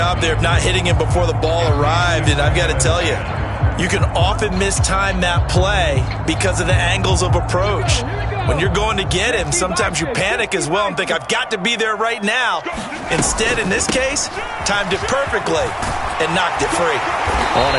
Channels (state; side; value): identical; both; correlation 1.00